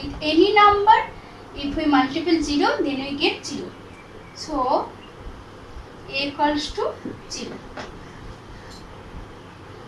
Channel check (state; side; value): identical; both; correlation 1.00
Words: any number, if we multiply 0, then we get 0. So a equals to 0.